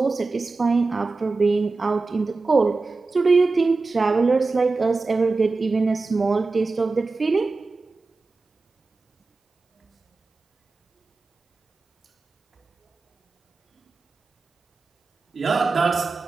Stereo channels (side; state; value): left; quieter; 3.8 dB